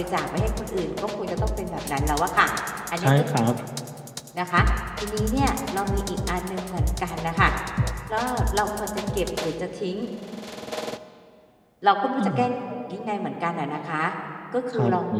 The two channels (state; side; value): identical; both; correlation 1.00